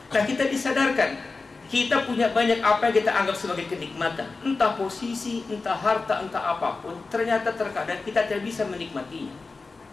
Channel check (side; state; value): right; quieter; 3.9 dB